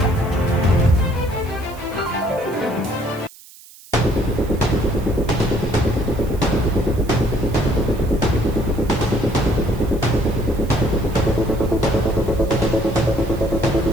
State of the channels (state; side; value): noise; right; hiss, 21 dB below the sound